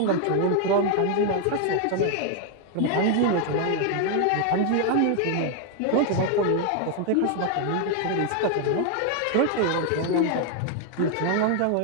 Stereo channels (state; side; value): different; both; correlation 0.01